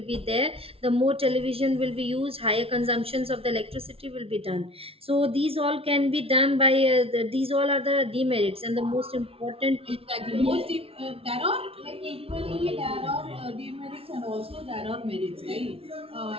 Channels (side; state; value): left; late; 0.27 ms